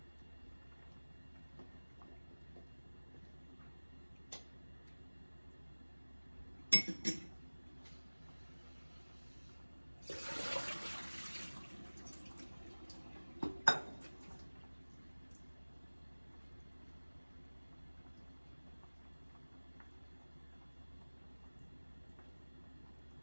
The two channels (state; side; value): inverted; both; correlation -1.00